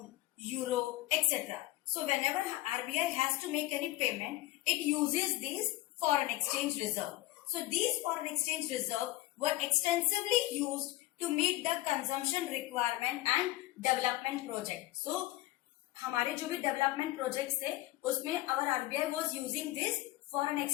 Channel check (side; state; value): right; quieter; 17.5 dB